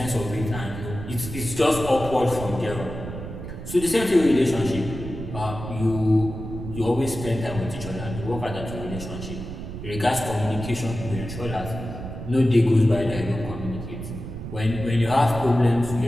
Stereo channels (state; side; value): noise; right; rumble, 9 dB below the sound